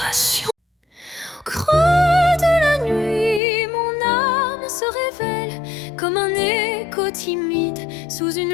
Au creux de la nuit, mon âme se révèle comme un écho timide sous une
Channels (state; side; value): drops out; right; at 3.4 s